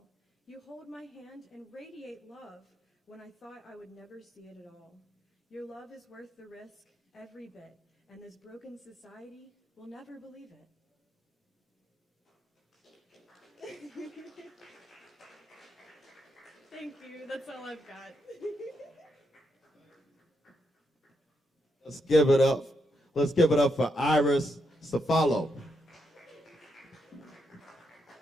You hold my hand and radiate love when I thought I would never see it at all. Your love is worth the risk, every bit, and this broken society will never believe it. Thank you, that's all I've got. Let's give it up. Let's give it up for Iris Ciafalo.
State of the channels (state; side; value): normal; both; correlation 0.81